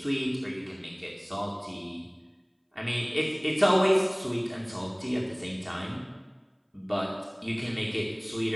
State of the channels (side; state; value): both; identical; correlation 1.00